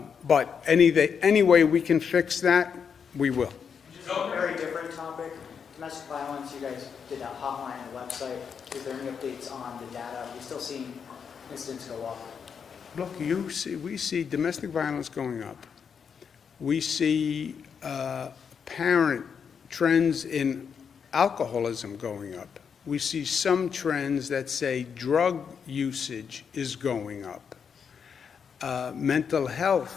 any way we can fix that, we will. Just a very different topic. Domestic violence, you guys did a hotline on the website. Is there any updates on the data? Are we still seeing incidents go up? Look, we see domestic violence going up. We see apparent trends in alcoholism going up. We see some trends that say drug usage is going up. Mental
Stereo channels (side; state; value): right; quieter; 6.7 dB